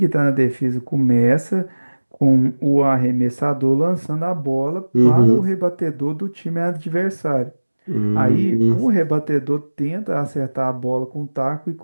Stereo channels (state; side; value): inverted; both; correlation -1.00